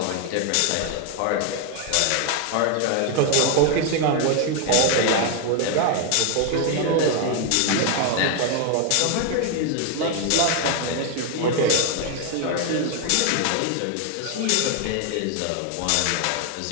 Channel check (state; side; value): different; both; correlation 0.01